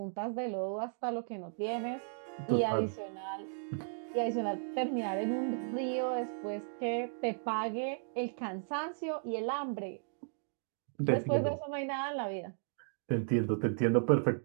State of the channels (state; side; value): silent; left; digital silence